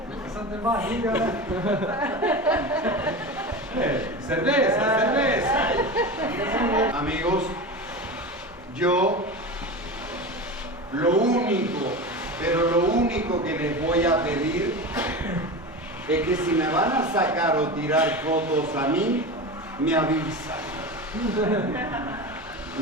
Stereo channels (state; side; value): normal; both; correlation 0.27